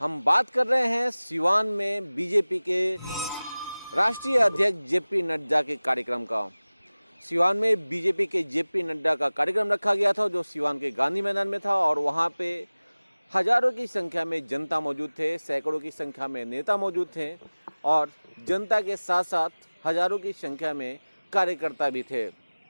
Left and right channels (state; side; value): inverted; both; correlation -0.99